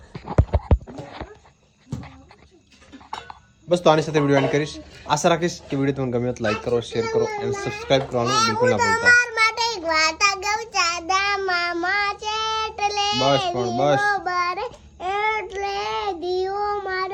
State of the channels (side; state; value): both; identical; correlation 1.00